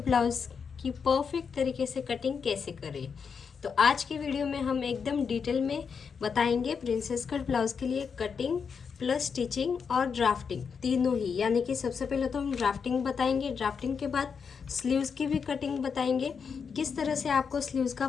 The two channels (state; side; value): quieter; right; 6.1 dB